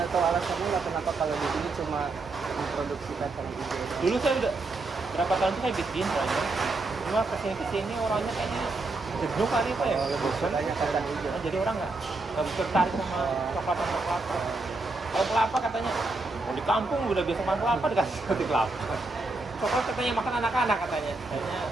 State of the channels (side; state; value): left; quieter; 3.3 dB